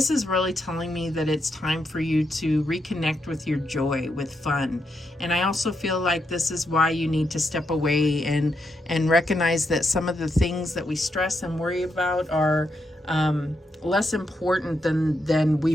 is really telling me that it's time for you to reconnect with your joy, with fun. And I also feel like this is why you need to step away and recognize that some of the things that we stress and worry about are less important than we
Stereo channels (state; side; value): normal; both; correlation 0.82